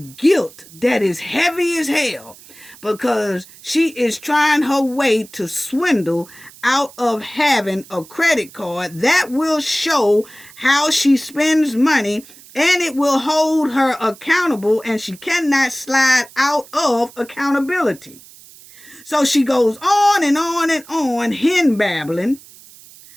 guilt that is heavy as hell, because she is trying her way to swindle out of having a credit card that will show how she spends money, and it will hold her accountable, and she cannot slide out of accountability. So she goes on and on and on, hen babbling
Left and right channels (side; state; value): right; noise; hiss, 22 dB below the sound